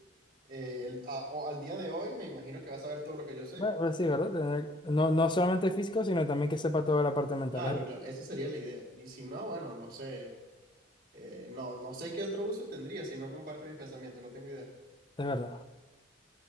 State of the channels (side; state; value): both; normal; correlation 0.57